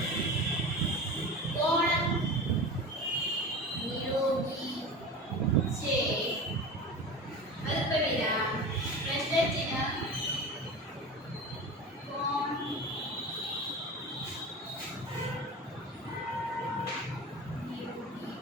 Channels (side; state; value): both; normal; correlation 0.31